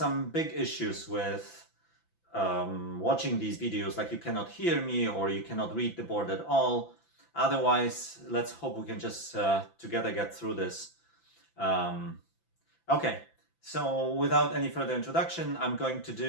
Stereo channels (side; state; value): right; late; 5.9 ms